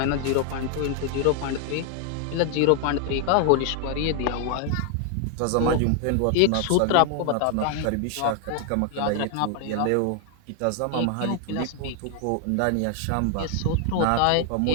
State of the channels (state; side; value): different; both; correlation 0.00